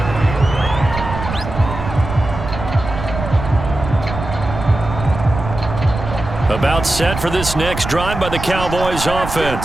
About set for this next drive by the Cowboys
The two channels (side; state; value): right; noise; rumble, 7 dB below the sound